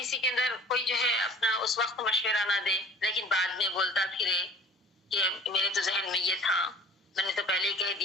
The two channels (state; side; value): normal; both; correlation 0.47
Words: کے اندر کوئی جو ہے اپنا اس وقت مشورہ نہ دے لیکن بعد میں بولتا پھرے کہ میرے تو ذہن میں یہ تھا، میں نے تو پہلے ہی کہہ